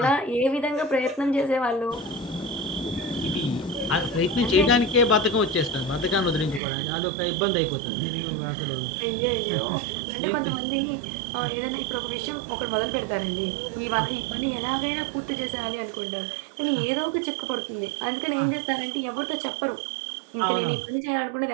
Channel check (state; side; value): drops out; left; at 6.6 s